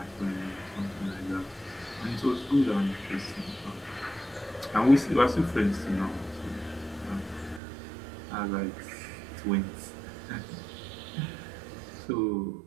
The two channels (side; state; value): left; drops out; at 7.6 s